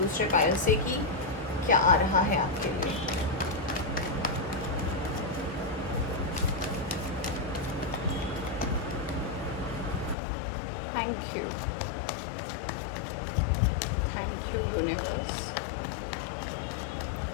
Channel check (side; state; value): right; drops out; at 10.2 s